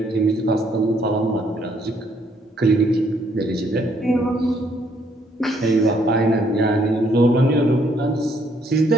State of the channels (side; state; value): both; normal; correlation 0.69